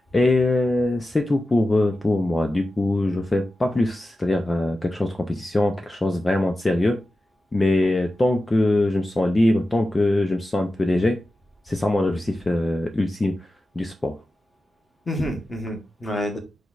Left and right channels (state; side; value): normal; both; correlation 0.93